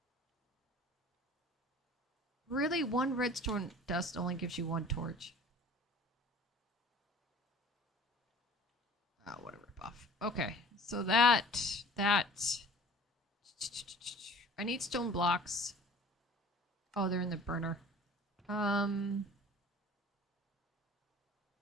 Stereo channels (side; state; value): both; normal; correlation 0.46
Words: Really? 1 redstone dust only gives you 1 torch. Oh, what a ripoff. Okay, so that... I need stone blocks. Oh, they're in the burner.